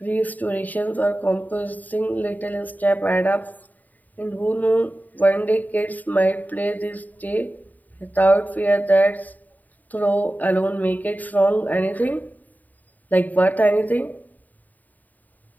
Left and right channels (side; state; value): right; late; 0.083 ms